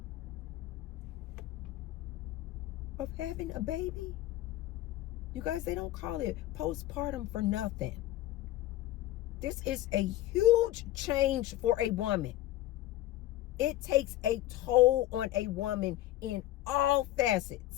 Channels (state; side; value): quieter; right; 14.9 dB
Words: of having a baby. You guys, they don't call it postpartum for nothing. This is a huge change for a woman. It takes a toll on a woman in all